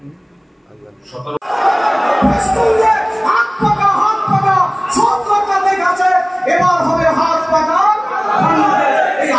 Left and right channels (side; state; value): both; identical; correlation 1.00